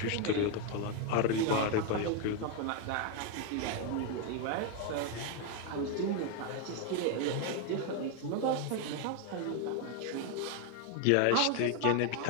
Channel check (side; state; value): both; different; correlation 0.01